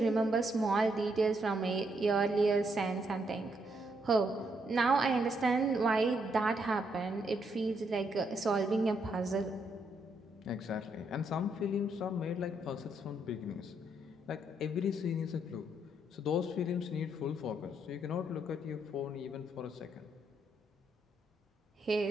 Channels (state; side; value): normal; both; correlation 0.75